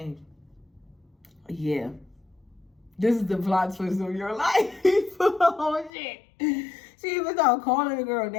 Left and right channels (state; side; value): drops out; right; at 5.9 s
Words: Yeah. This is the plot twist of your life. Oh shit. She even started calling the girl